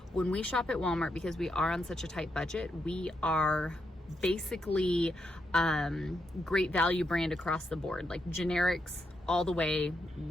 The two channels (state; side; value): normal; both; correlation 0.82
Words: When we shop at Walmart, because we are on such a tight budget, we are basically great value brand across the board, like generics all the way.